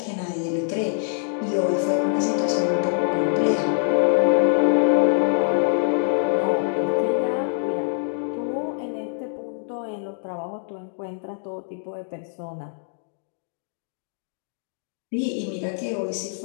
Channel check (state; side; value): silent; right; digital silence